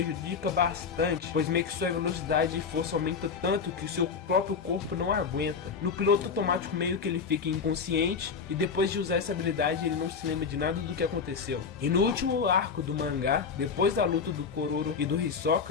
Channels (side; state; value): right; quieter; 5.8 dB